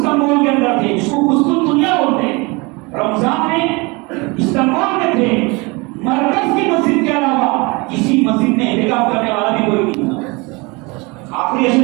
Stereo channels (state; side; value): quieter; left; 26.6 dB